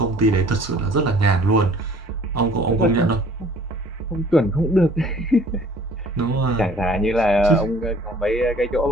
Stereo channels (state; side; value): normal; both; correlation 0.52